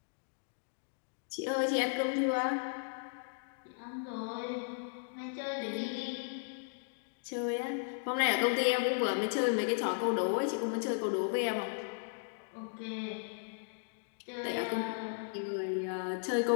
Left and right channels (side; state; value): right; silent; digital silence